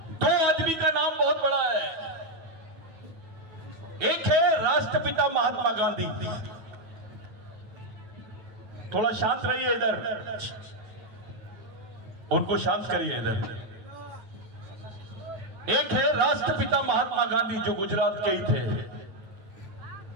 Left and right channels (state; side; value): late; left; 9.2 ms